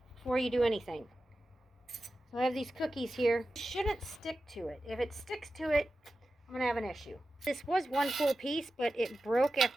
before you do anything. So I have these cookies here. It shouldn't stick to it. If it sticks to it, I'm going to have an issue. This was one full piece, but it broke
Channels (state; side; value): normal; both; correlation 0.93